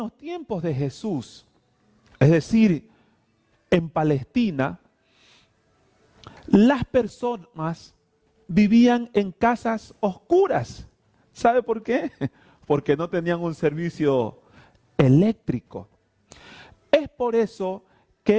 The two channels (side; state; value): both; identical; correlation 1.00